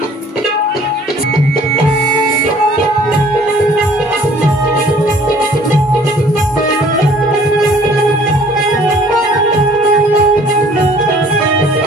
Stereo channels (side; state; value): both; normal; correlation 0.55